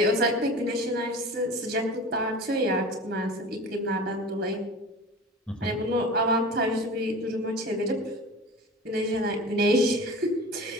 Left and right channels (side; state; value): both; normal; correlation 0.36